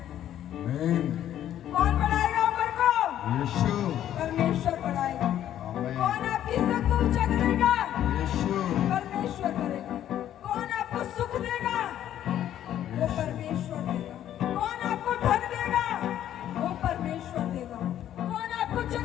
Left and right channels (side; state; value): right; quieter; 11.3 dB